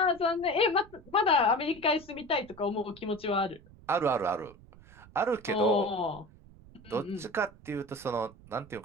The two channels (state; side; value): noise; right; rumble, 22 dB below the sound